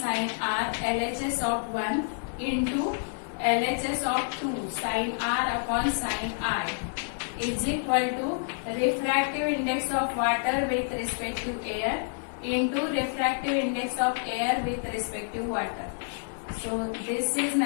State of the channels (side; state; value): right; silent; digital silence